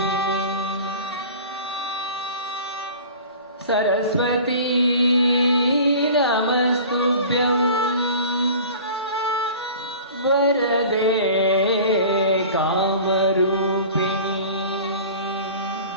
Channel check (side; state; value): both; inverted; correlation -0.41